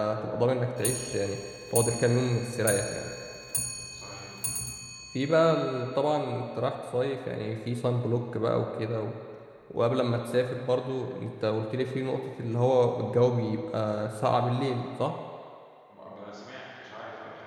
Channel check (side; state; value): both; identical; correlation 1.00